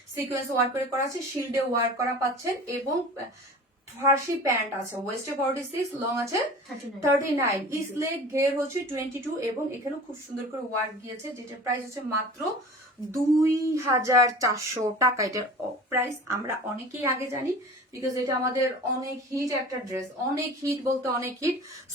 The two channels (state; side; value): normal; both; correlation 0.39